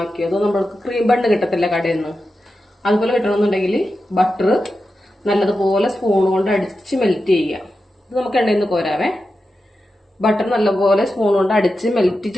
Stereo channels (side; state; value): both; normal; correlation 0.91